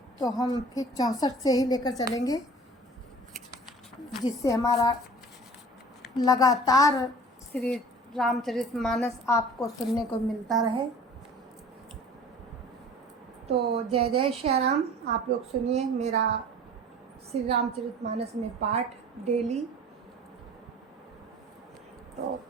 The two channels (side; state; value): both; normal; correlation 0.44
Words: तो हम फिर 64 से ही लेकर चलेंगे, जिससे हमारा लगातार श्री रामचरितमानस आपको सुनने को मिलता रहे। तो जय जय श्री राम। आप लोग सुनिए मेरा श्री रामचरितमानस में पाठ डेली। तो